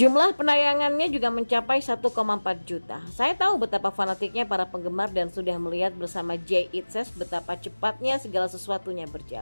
penayangannya juga mencapai 1,4 juta. Saya tahu betapa fanatiknya para penggemar dan sudah melihat bersama Jay Itzes betapa cepatnya segala sesuatunya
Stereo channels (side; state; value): both; inverted; correlation -1.00